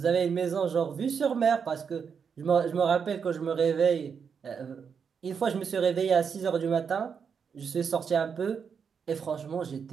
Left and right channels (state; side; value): quieter; left; 6.5 dB